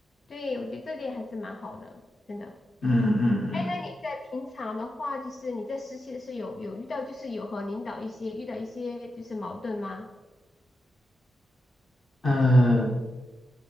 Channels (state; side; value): normal; both; correlation 0.88